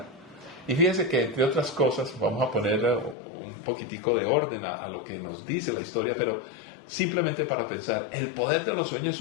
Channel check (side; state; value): right; drops out; at 3.2 s